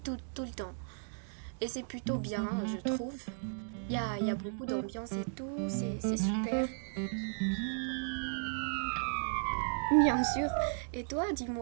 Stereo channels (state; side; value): silent; left; digital silence